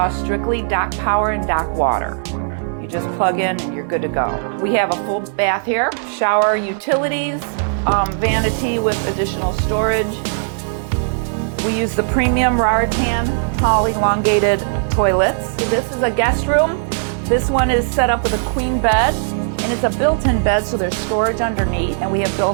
strictly dock power and dock water. You just plug in and you're good to go. We have a full bath here, shower, utilities, vanity with additional storage. We use the premium Raritan tall elongated toilets. So this is a guest room. This one is set up with a queen bed, and it's a built-in bed, so there's storage underneath. And we have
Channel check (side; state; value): left; silent; digital silence